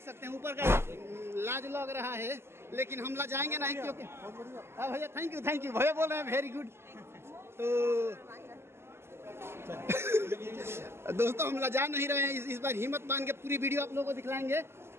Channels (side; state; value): left; late; 0.12 ms